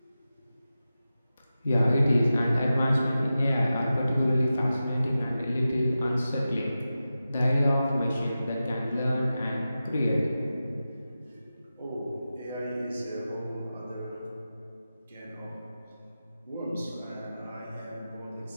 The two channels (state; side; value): inverted; both; correlation -0.93